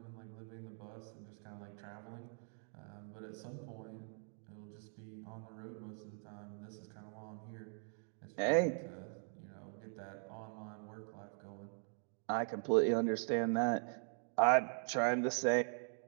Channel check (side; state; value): left; silent; 50 dB below the other